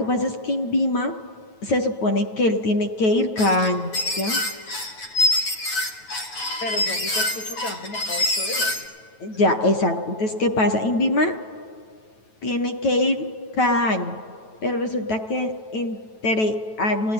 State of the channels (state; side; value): late; right; 9.2 ms